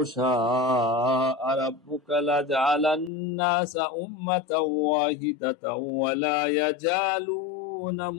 شاء ربك لجعل الناس أمة واحدة ولا يزالون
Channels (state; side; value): drops out; right; at 3.1 s